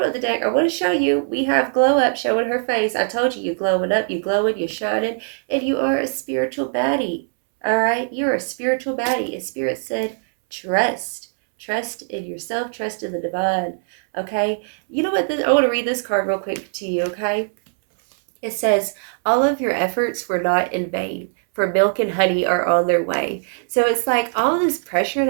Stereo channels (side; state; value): left; silent; 65 dB below the other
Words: of the deck, I want to show you, we have glow up showing her face. I told you, you're glowing up, you're glowing, you're shining, and you are a spiritual baddie. All right, you're a spiritual baddie. And Spirit said, trust. Trust in yourself, trust in the divine, okay? You know what? I want to read this card real quick to you, okay? It says, all of your efforts were not in vain, for milk and honey are on their way. So it's like all this pressure